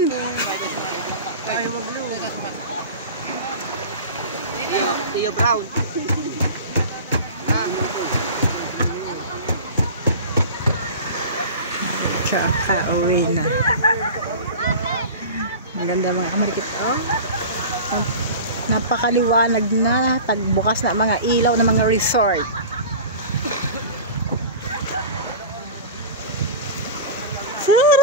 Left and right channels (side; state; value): both; inverted; correlation -0.34